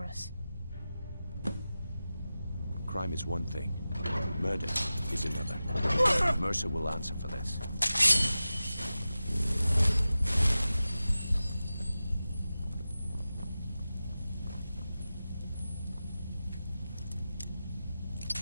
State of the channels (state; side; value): inverted; both; correlation -0.94